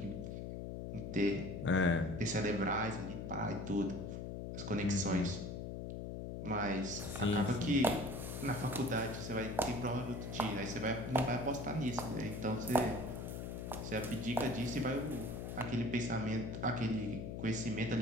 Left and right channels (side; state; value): left; noise; hum, 6 dB below the sound